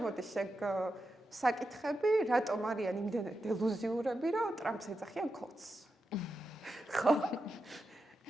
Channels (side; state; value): both; normal; correlation 0.88